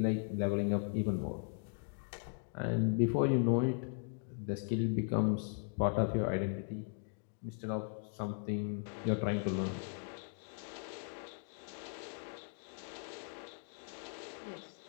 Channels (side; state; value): right; silent; 52 dB below the other